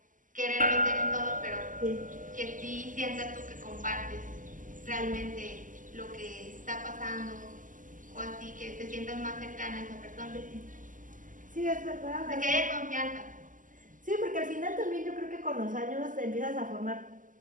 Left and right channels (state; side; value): late; left; 0.38 ms